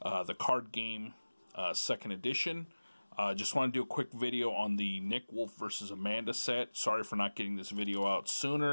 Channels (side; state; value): both; inverted; correlation -1.00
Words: the card game, 2nd edition. Just want to do a quick video on the Nick Wolfe versus Amanda set. Sorry for not getting this video out